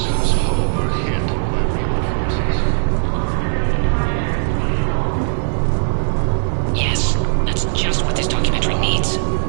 Yes, that's just what this documentary needs.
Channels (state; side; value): silent; left; 67 dB below the other